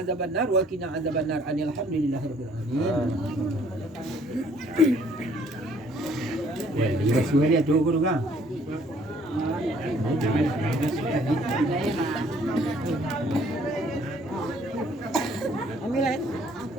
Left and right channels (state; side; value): normal; both; correlation 0.61